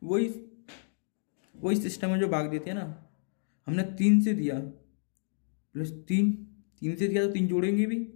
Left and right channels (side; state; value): right; silent; digital silence